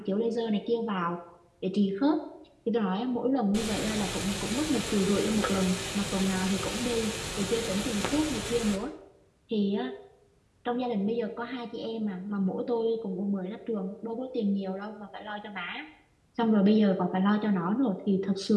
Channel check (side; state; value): both; identical; correlation 1.00